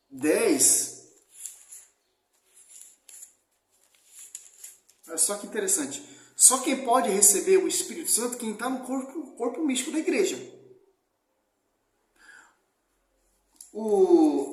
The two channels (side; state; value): both; identical; correlation 1.00